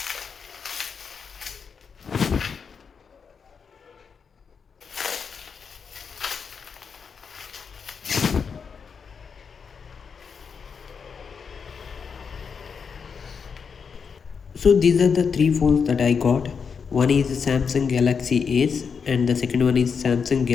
So these are the three phones that I got. One is Samsung Galaxy Ace, and the second one is Samsung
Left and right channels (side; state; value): right; quieter; 6.1 dB